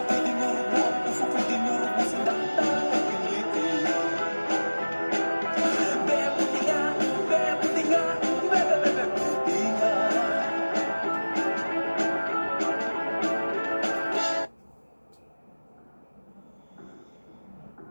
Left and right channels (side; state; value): both; inverted; correlation -1.00